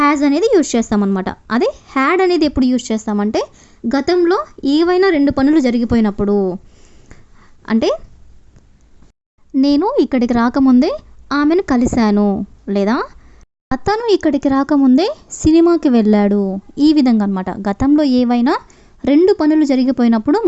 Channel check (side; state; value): both; identical; correlation 1.00